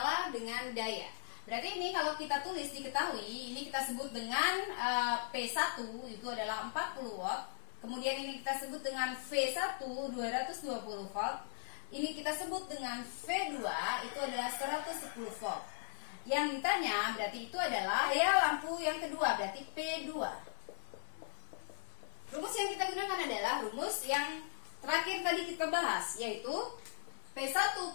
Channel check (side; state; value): right; silent; digital silence